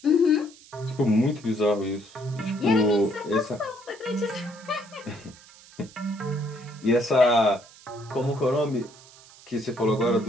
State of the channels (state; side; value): noise; right; hiss, 23 dB below the sound